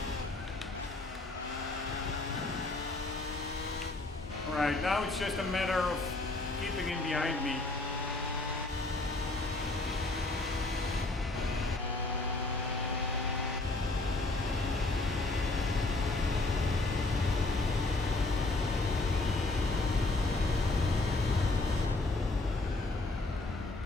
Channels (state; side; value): quieter; right; 3.0 dB